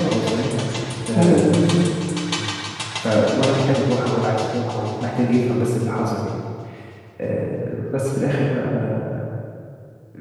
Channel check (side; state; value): both; identical; correlation 1.00